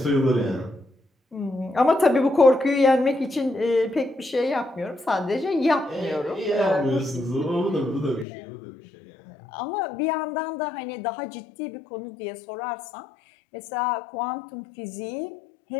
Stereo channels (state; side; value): drops out; right; at 8.2 s